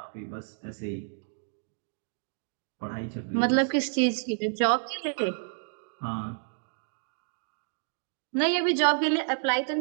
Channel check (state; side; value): silent; left; digital silence